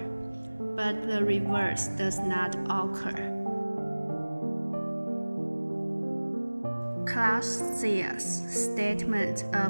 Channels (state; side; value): inverted; both; correlation -1.00